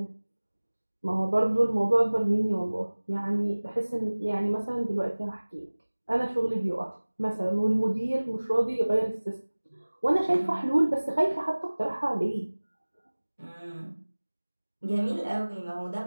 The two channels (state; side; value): inverted; both; correlation -1.00